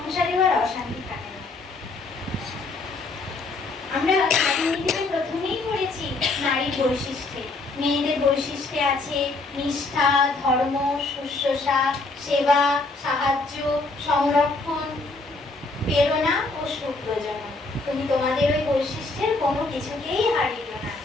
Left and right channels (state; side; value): quieter; right; 3.5 dB